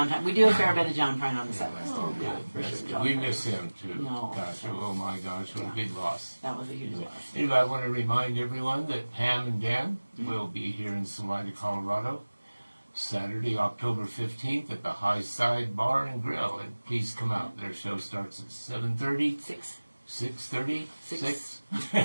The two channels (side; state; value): both; inverted; correlation -1.00